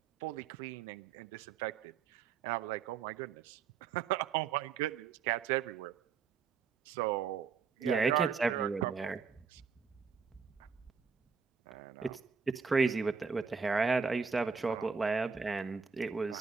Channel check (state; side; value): quieter; left; 5.8 dB